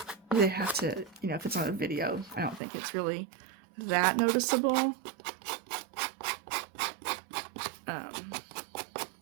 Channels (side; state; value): left; drops out; at 2.6 s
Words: They have to, if it's on a video, I don't think it's really that noticeable.